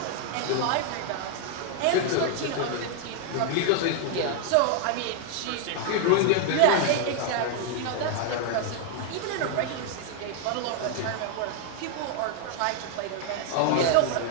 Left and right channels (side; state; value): both; different; correlation 0.00